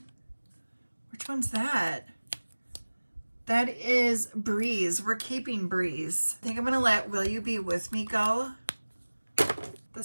Which one's that? That is Breeze. We're keeping Breeze. I think I'm gonna let Will You Be With Me go. The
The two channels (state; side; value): inverted; both; correlation -1.00